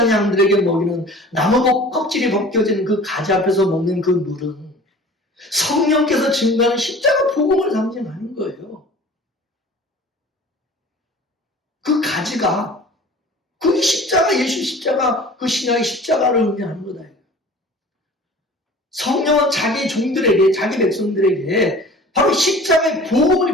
양들에게 먹이는 나무 껍질이 벗겨진 그 가지 앞에서 먹는 그 물은 성령께서 증거하는 십자가 복음을 상징하는 거예요. 그 가지가 그 십자가, 예수 십자가, 그 신약의 십자가를 의미하는 거다. 성령은 자기 종들에게, 자기 백성들에게 바로 십자가의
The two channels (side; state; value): both; normal; correlation 0.44